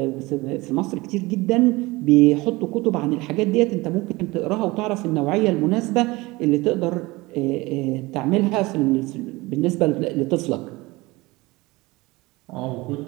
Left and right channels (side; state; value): left; quieter; 21.9 dB